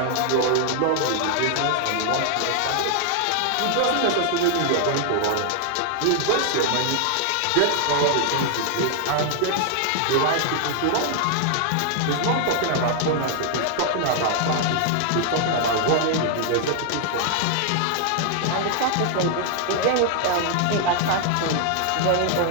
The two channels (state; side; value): different; both; correlation 0.00